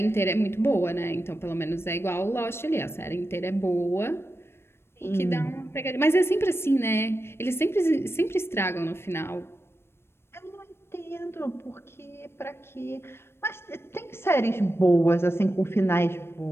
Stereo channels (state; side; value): late; right; 0.12 ms